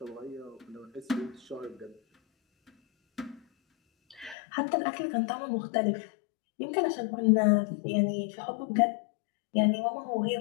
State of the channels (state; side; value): drops out; right; at 4.4 s